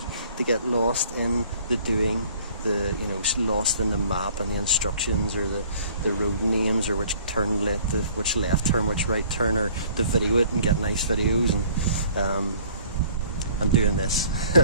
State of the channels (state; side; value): inverted; both; correlation -0.54